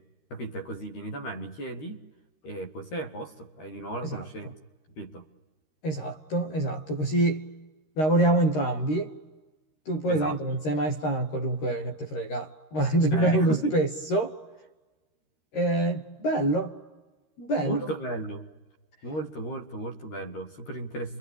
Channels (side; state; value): right; late; 13 ms